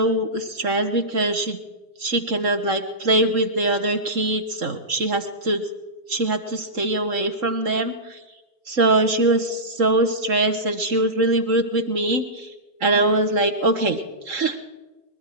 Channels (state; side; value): late; left; 3.7 ms